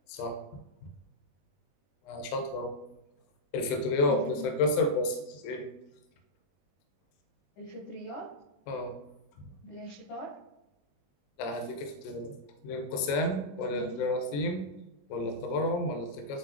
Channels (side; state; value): right; late; 21 ms